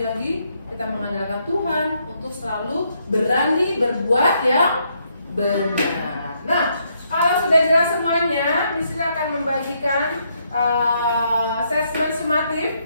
kita mengandalkan Tuhan untuk selalu berani berbuat yang benar. Nah, kalau sudah jelas semuanya, Miss akan membagikan assessment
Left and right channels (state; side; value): inverted; both; correlation -0.75